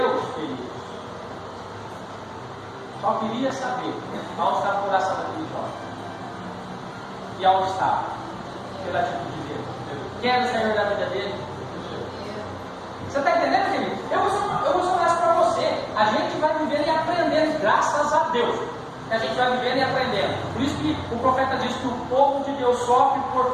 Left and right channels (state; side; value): identical; both; correlation 1.00